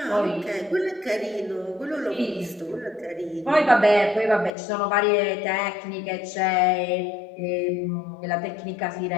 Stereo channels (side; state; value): right; drops out; at 4.5 s